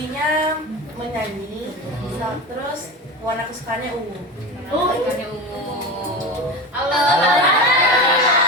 menyanyi. Terus warna kesukaannya ungu. Ikannya ungu. Halo.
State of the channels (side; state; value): both; normal; correlation 0.25